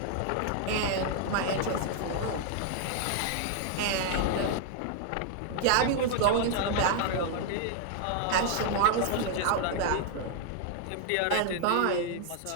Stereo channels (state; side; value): different; both; correlation 0.00